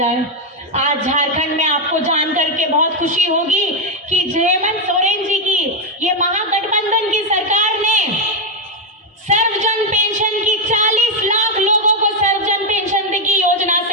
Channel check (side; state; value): both; normal; correlation 0.03